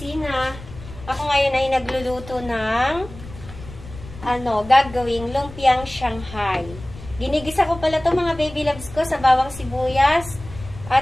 Ako ngayon ay nagluluto ng gagawing lumpiang Shanghai. Ginigisa ko pala to mga baby loves ko sa bawang sibuyas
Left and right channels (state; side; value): noise; left; rumble, 15 dB below the sound